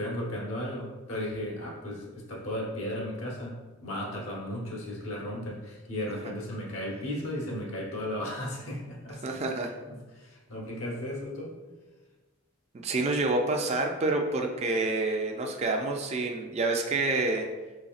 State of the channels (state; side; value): normal; both; correlation 0.24